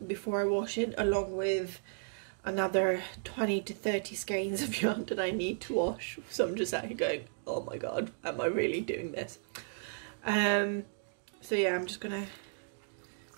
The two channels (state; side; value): silent; left; digital silence